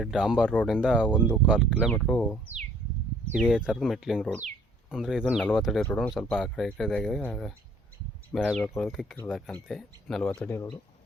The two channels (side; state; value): both; normal; correlation 0.59